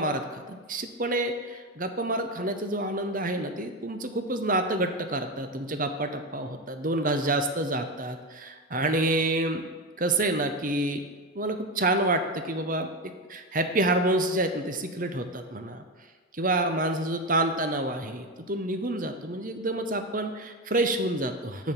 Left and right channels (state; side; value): normal; both; correlation 0.16